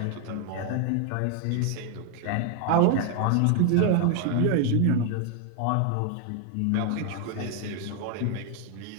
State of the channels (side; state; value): both; different; correlation 0.00